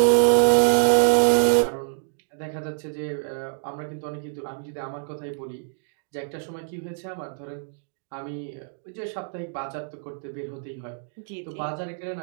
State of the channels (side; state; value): left; silent; digital silence